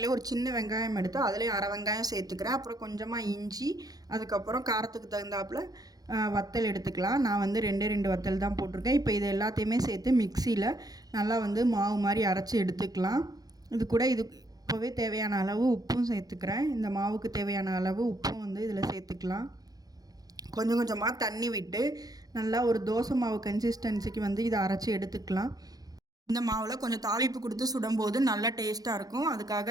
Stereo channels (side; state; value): left; late; 0.18 ms